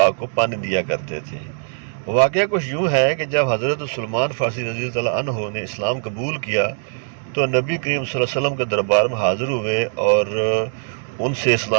کو پانی دیا کرتے تھے۔ واقعہ کچھ یوں ہے کہ جب حضرت سلمان فارسی رضی اللہ عنہ نے اسلام قبول کیا تو نبی کریم صلی اللہ علیہ وسلم کے دربار میں حاضر ہوئے اور ان سے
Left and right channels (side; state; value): left; silent; digital silence